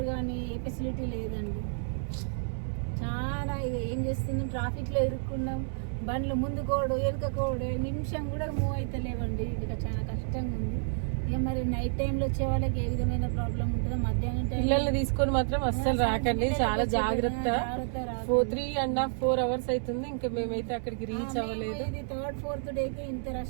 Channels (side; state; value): left; silent; 58 dB below the other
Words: కానీ ఏ ఫెసిలిటీ లేదండి. చాలా ఇది ఏం చేస్తున్నాం, ట్రాఫిక్ లో ఇరుక్కున్నాం. బండ్లు ముందు కోడు వెనుక కోడు, నిమిషం కూడా మూవ్ అయితే లేవండి. ఇక చాలా కష్టంగా ఉంది. ఇక మరి నైట్ టైంలో వచ్చే వాళ్ళకి ఏ విధమైన ప్రాబ్లం ఉంటుందో, మధ్యాహ్నం టైం పిల్లల్ని తీసుకొని మాత్రం అస్సలు రాకండి, చాలా జాగ్రత్త. 3.5-4 hours అవుతుంది, ఇంకా మేమైతే అక్కడికి రీచ్ అవ్వలేదు. ఇది 3rd 4th డేకి ఇంత